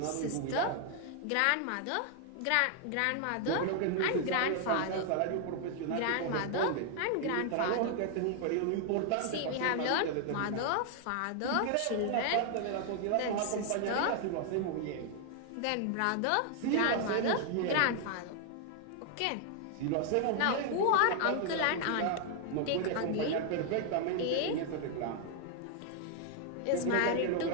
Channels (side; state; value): both; different; correlation 0.00